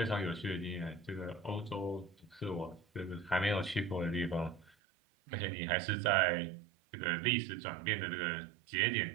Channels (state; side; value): drops out; left; at 4.7 s